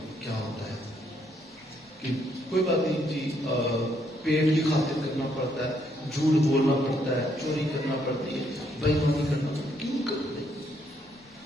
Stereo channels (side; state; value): both; normal; correlation 0.72